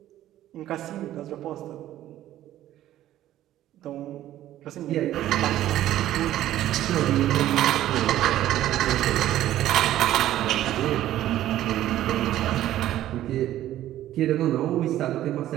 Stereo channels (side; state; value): left; quieter; 13.2 dB